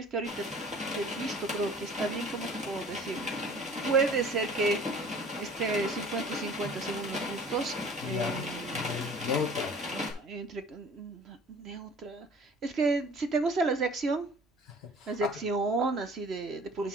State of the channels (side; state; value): both; normal; correlation 0.48